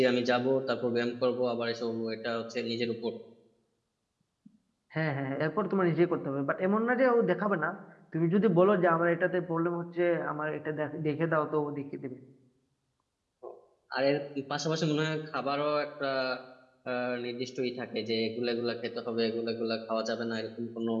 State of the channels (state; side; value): identical; both; correlation 1.00